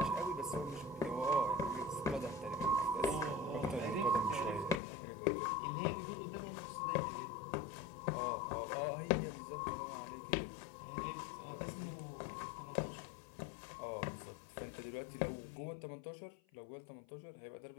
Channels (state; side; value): drops out; right; at 4.8 s